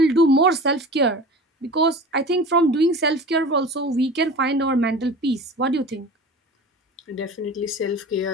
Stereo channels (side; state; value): both; normal; correlation 0.37